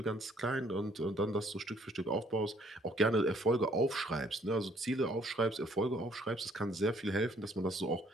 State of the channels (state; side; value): normal; both; correlation 0.63